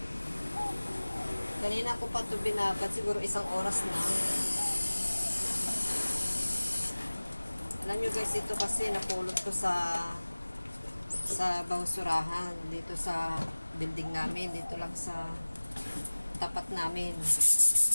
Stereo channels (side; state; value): both; inverted; correlation -1.00